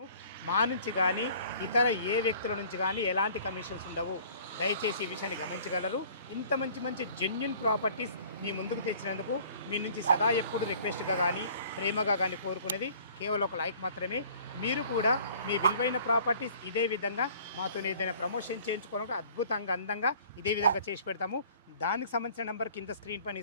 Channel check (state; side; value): inverted; both; correlation -0.52